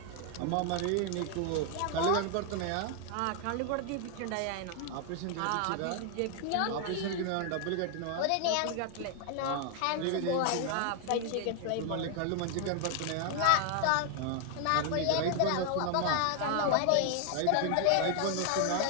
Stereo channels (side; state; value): both; different; correlation 0.00